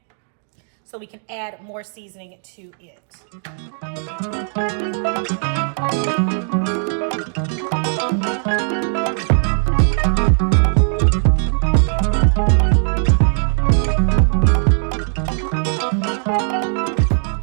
so we can add more seasoning to it.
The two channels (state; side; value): silent; left; 62 dB below the other